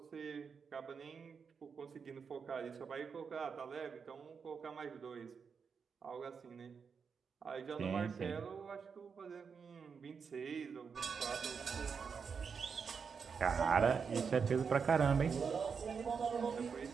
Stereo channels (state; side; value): quieter; left; 6.0 dB